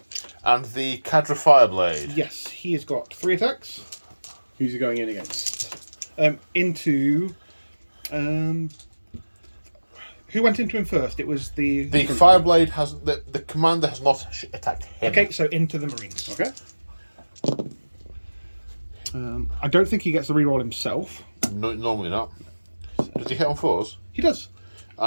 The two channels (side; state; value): both; inverted; correlation -1.00